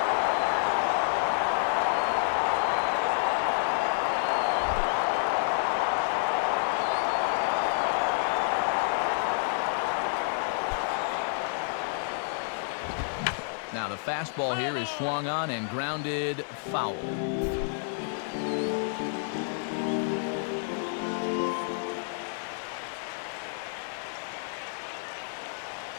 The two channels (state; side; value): silent; right; digital silence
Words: Now the fastball here is swung on and grounded foul.